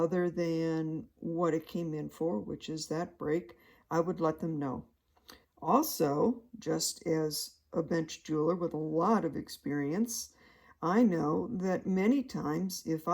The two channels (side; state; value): both; identical; correlation 1.00